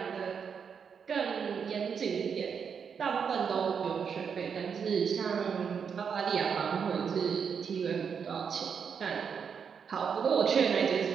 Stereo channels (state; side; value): quieter; left; 6.7 dB